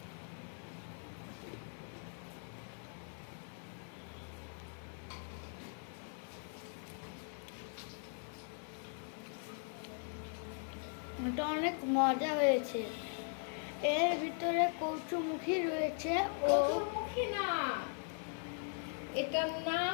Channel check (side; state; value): right; silent; 51 dB below the other